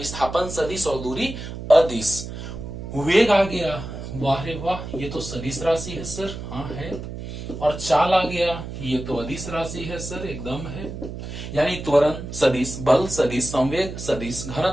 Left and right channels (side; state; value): right; noise; hum, 9 dB below the sound